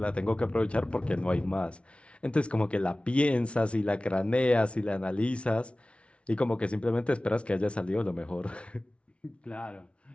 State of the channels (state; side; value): late; right; 0.060 ms